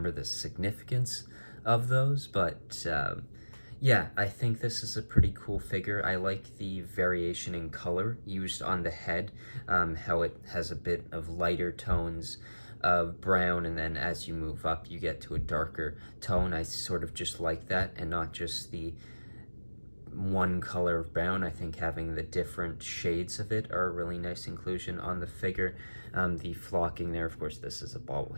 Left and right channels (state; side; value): inverted; both; correlation -1.00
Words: the significance of those, but yeah, I think this is a pretty cool figure. I like the variation in color used on the head, how it has a bit of lighter tones of brown, and then as you move up you get to a darker tone. I sort of just like that, and not just the one color of brown. I think having the different shades of it are a really nice inclusion on the figure. The flocking there, of course, this is a